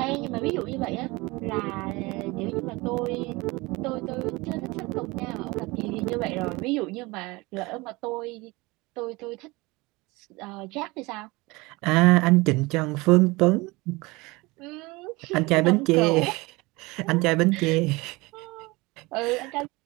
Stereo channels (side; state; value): left; quieter; 23.3 dB